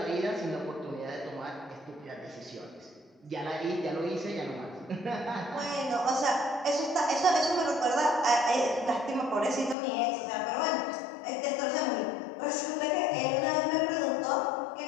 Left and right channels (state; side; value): drops out; right; at 9.8 s